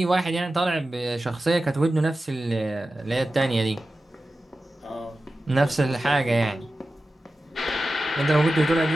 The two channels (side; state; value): both; normal; correlation 0.94